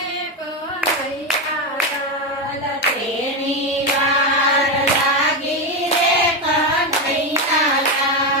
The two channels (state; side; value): normal; both; correlation 0.11